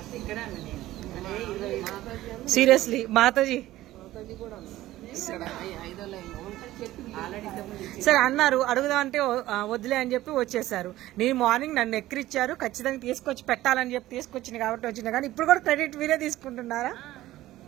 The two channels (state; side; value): quieter; left; 15.6 dB